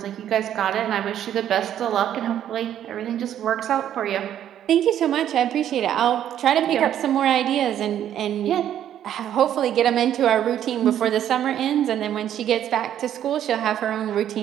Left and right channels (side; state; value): left; quieter; 10.7 dB